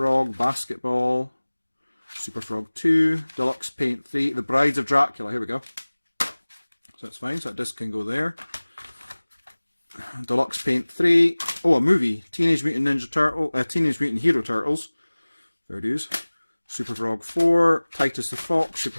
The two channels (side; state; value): both; inverted; correlation -1.00